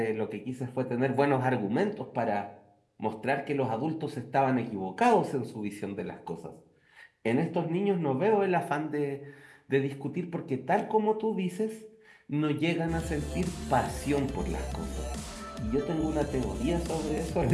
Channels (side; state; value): both; identical; correlation 1.00